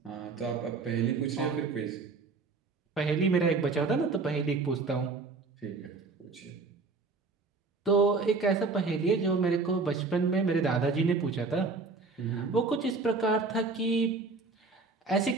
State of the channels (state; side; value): quieter; left; 4.1 dB